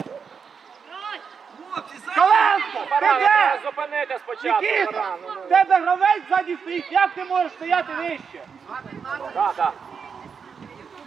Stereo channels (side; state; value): left; quieter; 6.2 dB